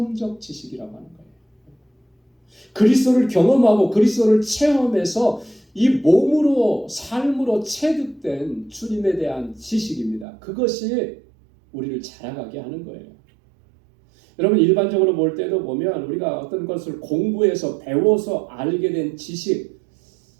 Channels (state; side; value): drops out; left; at 10.2 s